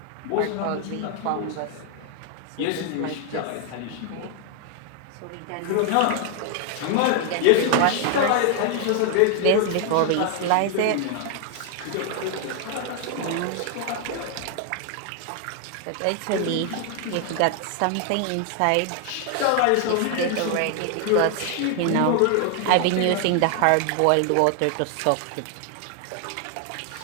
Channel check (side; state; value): both; different; correlation 0.00